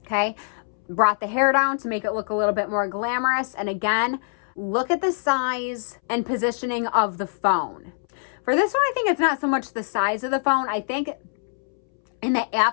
okay? Brought the hair down to make it look a little bit more glamorous. And again, look at the size and positioning of the phone. For this one, I think it's not so much the size of the phone. I think in the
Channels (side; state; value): right; silent; 63 dB below the other